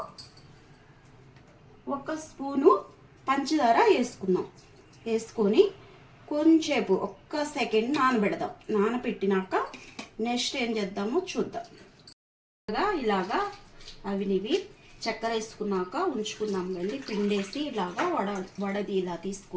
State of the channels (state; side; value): identical; both; correlation 1.00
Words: 1 స్పూను పంచదార వేసుకుందాం. వేసుకొని కొంచెంసేపు 1 సెకండ్ నానబెడదాం. నానబెట్టినాక నెక్స్ట్ ఏం చేద్దామో చూద్దాం. ఇలాగా అవినివి చక్కెర వేసుకున్నాక ఉంచుకుందాం. వెళ్ళి పిండేసి ఇలాగా వడది ఇలా